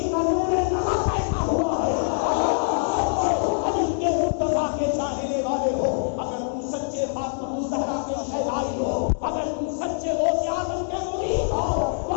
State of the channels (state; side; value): silent; right; 62 dB below the other